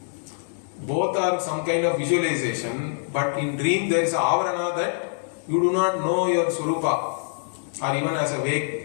Both are some kind of visualization, but in dream there is a Avarana that you do not know your Swarupa. Or even as a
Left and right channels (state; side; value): silent; right; digital silence